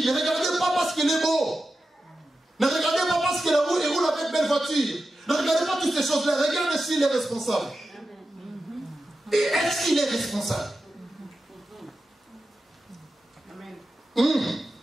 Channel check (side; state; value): both; normal; correlation 0.92